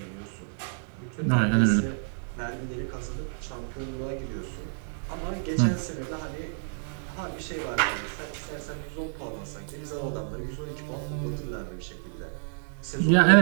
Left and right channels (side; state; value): left; silent; digital silence